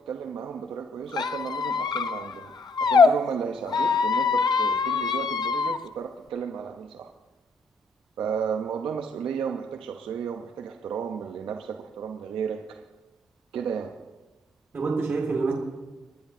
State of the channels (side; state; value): both; normal; correlation 0.66